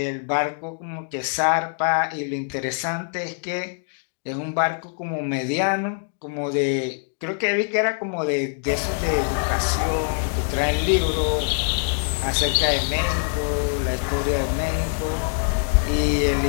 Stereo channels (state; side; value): silent; right; digital silence